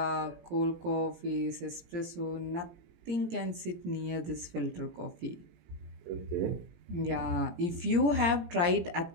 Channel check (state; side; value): late; left; 17 ms